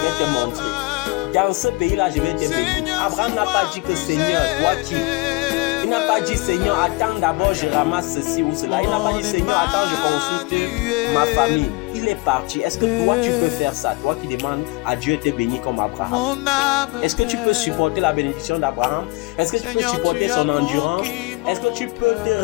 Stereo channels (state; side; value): quieter; right; 25.7 dB